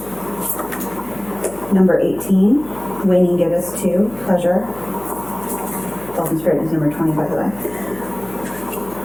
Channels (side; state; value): left; noise; hum, 19 dB below the sound